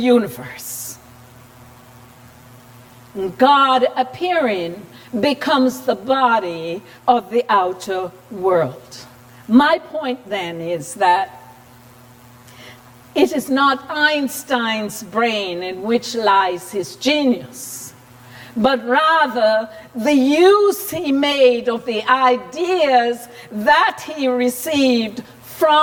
God appearing becomes the body of the outer world. My point then is that it is not Einstein's brain in which lies his genius, but rather the use he made of the ideas that he received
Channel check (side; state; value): both; identical; correlation 1.00